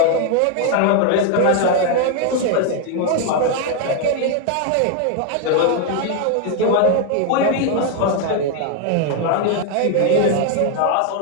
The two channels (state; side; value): different; both; correlation 0.00